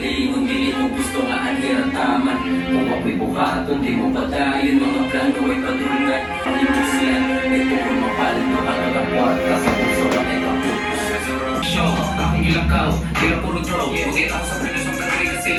kung dili mo gusto nga anhirataman. Kung ako'y buhaton, di mo patayin, mga plano ay patulungan. Pag-ibig yan, ito kung mapalit na kakagapuan, kasi puso na ay kaputos. Show, akong ilakaw, tira puro draw. Bukit ako sa prelos ng kanari kasi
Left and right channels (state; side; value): identical; both; correlation 1.00